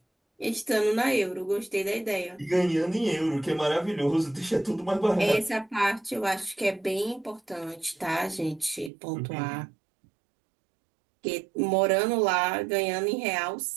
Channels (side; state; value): left; drops out; at 8.9 s